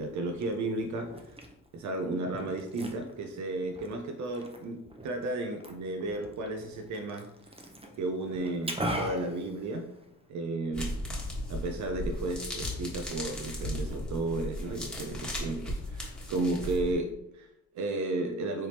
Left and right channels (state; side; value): normal; both; correlation 0.38